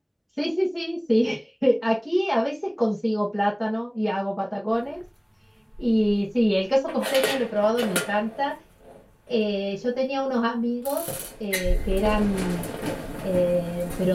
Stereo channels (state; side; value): identical; both; correlation 1.00